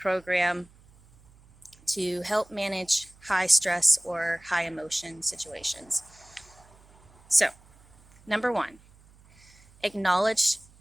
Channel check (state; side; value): noise; right; hum, 27 dB below the sound